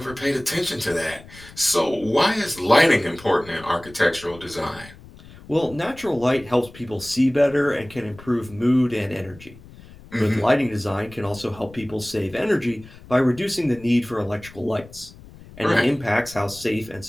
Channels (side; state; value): left; noise; rumble, 20 dB below the sound